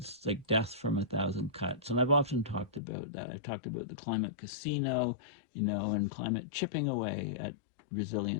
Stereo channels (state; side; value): drops out; right; at 2.8 s